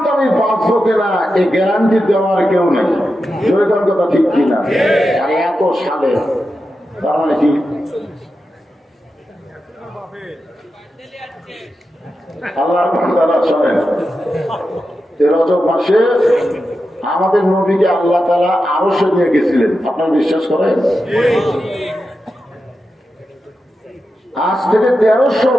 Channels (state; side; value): normal; both; correlation 0.90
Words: আমি বাঁচবো কিনা, এই গ্যারান্টি দেওয়ার কেউ নেই। জয়গান কথা ঠিক কিনা? আর এত সালে তার মানে কি? আল্লাহর বান্দারা শোনেন, এই রজব মাসে আমাদের নবীকে আল্লাহ তাআলা আরশে নিয়ে গেছিলেন। আপনারা বিশ্বাস করেন? আজ থেকে 1300